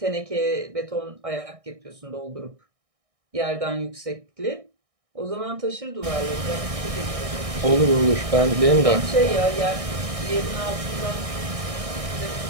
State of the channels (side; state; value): left; late; 1.6 ms